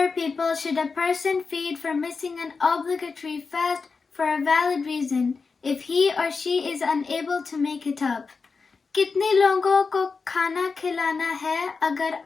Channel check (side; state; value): right; quieter; 4.7 dB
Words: people should a person feed for missing an obligatory fast for a valid reason if he or she is unable to make it up? कितने लोगों को खाना खिलाना है अगर